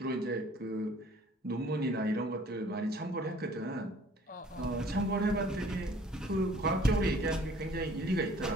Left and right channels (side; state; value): both; normal; correlation 0.54